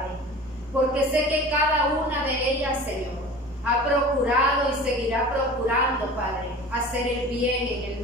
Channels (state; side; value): normal; both; correlation 0.39